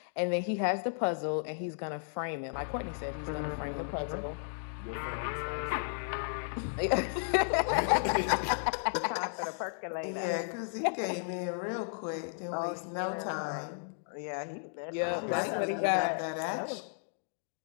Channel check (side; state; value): right; silent; digital silence